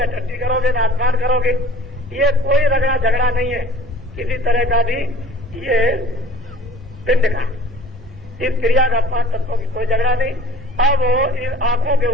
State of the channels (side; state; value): both; normal; correlation 0.47